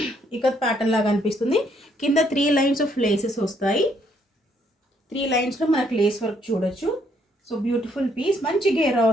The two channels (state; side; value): normal; both; correlation 0.69